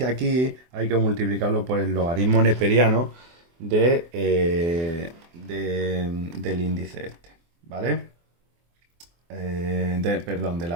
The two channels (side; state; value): left; late; 24 ms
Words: aquí, hay que multiplicarlo por el logaritmo neperiano del índice este, ¿vale? Perdón, de